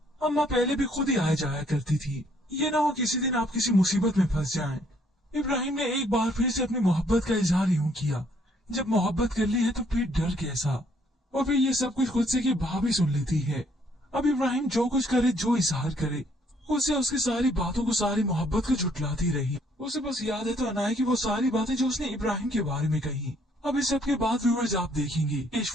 अम्मा पहले भी खुद ही आया जाया करती थी, ये ना हो किसी दिन आप किसी मुसीबत में फंस जाएं। इब्राहिम ने एक बार फिर से अपनी मोहब्बत का इजहार यूं किया, जब मोहब्बत कर ली है तो फिर डर कैसा। और फिर ये सब कुछ खुद से की भाभी सुन लेती है। अब इब्राहिम जो कुछ करे, जो इजहार करे, उसे उसकी सारी बातों को, सारी मोहब्बत को झुटलाती रही। उसे बस याद है तो अनाया की वो सारी बातें जो उसने इब्राहिम के बारे में कही। अब इस सब के बाद व्यूअर्स आप देखेंगे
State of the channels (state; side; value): normal; both; correlation 0.66